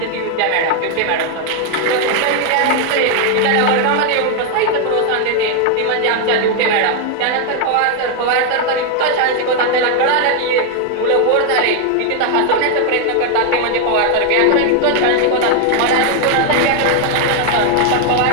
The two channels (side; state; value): both; different; correlation 0.00